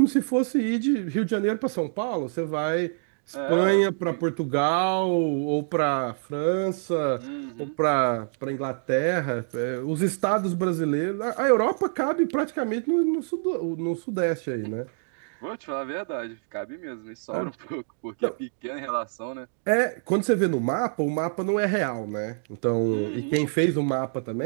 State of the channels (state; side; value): silent; left; digital silence